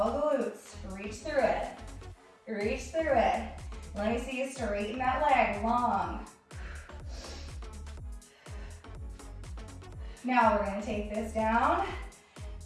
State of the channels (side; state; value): both; identical; correlation 1.00